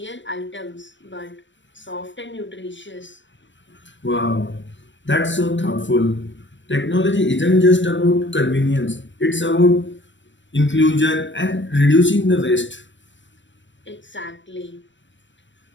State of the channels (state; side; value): late; right; 0.54 ms